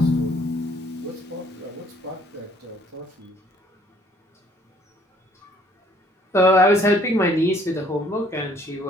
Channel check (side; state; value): both; normal; correlation 0.61